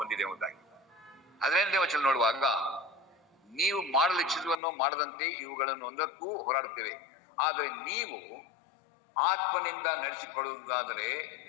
ಬಂದಿದೆ ಎಂಬುದಾಗಿ. 18ನೇ ವಚನ ನೋಡುವಾಗ, ನೀವು ಮಾಡಲು ಇಚ್ಛಿಸುವನ್ನು ಮಾಡದಂತೆ ಇವುಗಳನ್ನು ಒಂದಕ್ಕೂ ಹೋರಾಡುತ್ತೇವೆ. ಆದರೆ ನೀವು ಆತ್ಮನಿಂದ ನಡೆಸಿಕೊಳ್ಳುವುದಾದರೆ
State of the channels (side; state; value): right; drops out; at 4.5 s